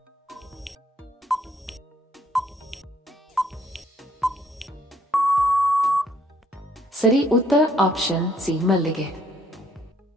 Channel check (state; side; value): normal; both; correlation 0.66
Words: ಸರಿ ಉತ್ತರ ಆಪ್ಷನ್ ಸಿ ಮಲ್ಲಿಗೆ.